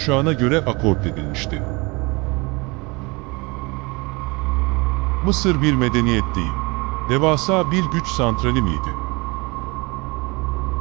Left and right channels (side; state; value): left; quieter; 26.3 dB